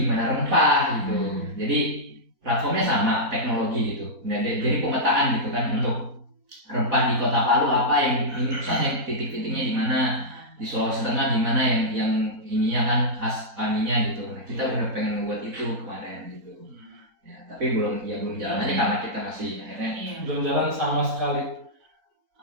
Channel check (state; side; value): late; left; 4.1 ms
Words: rempah gitu. Jadi platformnya sama, teknologi gitu. Nah, jadi pemetaan gitu kan untuk rempah di Kota Palu apa yang ini pusatnya titik-titiknya di mana, di Sulawesi Tengah di mana yang ininya kan khas paninya gitu. Nah kita udah pengen membuat itu kemarin gitu. Ya tapi belum jalan aja karena kita masih akhirnya Belum jalan sama sekali.